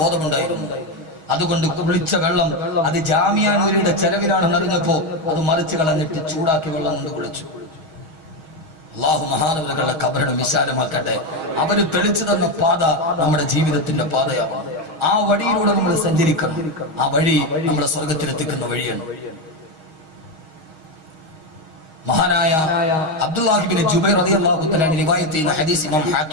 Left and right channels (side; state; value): left; late; 6.3 ms